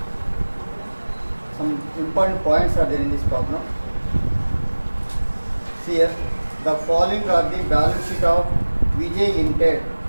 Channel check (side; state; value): both; inverted; correlation -1.00